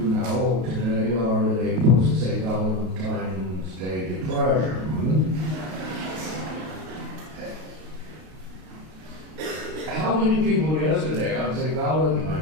now today are in a post-St. Valentine's Day depression. How many people yesterday on St.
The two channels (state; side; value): late; left; 32 ms